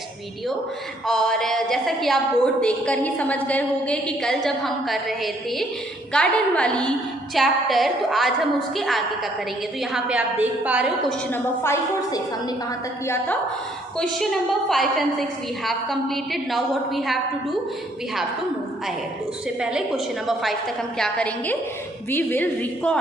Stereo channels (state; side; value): normal; both; correlation 0.66